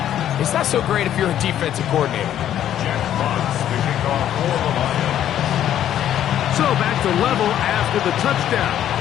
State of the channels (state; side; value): quieter; right; 11.0 dB